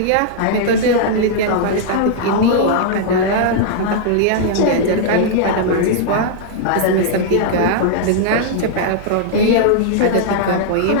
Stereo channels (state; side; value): different; both; correlation -0.01